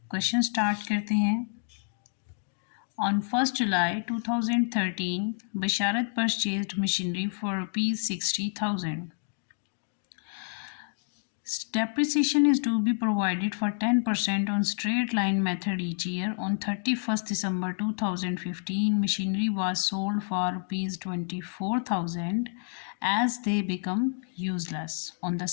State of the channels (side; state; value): right; silent; digital silence